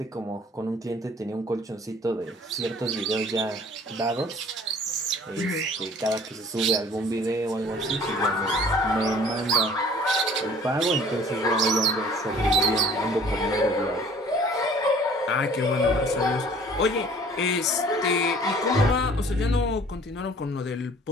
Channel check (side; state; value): both; normal; correlation 0.52